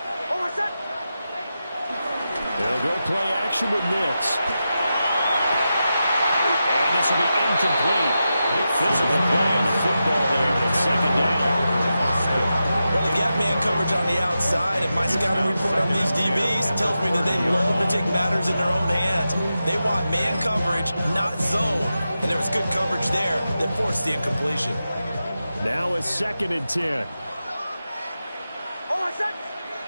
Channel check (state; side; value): inverted; both; correlation -0.90